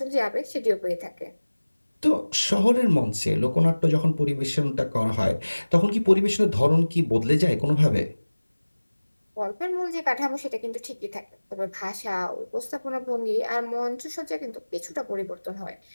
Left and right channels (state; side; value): inverted; both; correlation -1.00